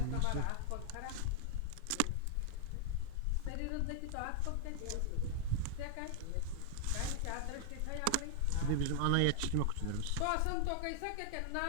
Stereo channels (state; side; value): different; both; correlation 0.00